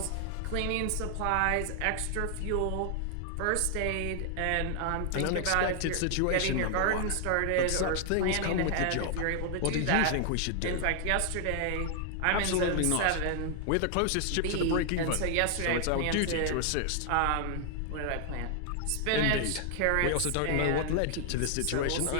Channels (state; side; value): different; both; correlation 0.00